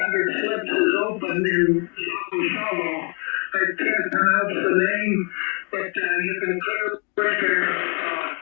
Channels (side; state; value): right; quieter; 36.1 dB